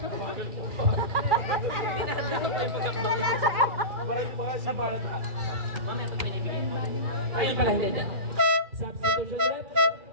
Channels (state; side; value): late; left; 2.4 ms